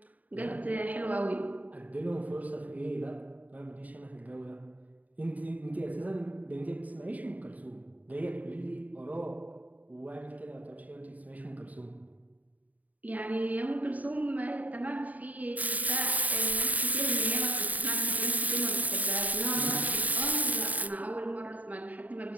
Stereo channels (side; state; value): left; late; 0.074 ms